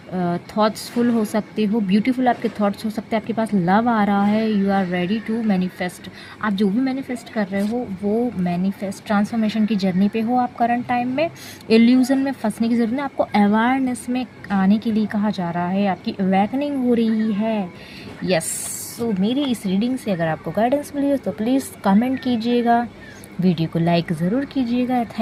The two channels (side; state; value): both; identical; correlation 1.00